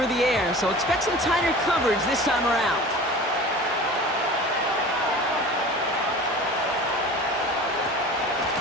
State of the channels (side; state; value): both; normal; correlation 0.38